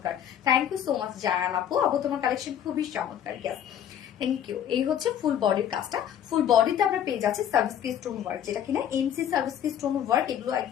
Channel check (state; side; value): quieter; right; 9.8 dB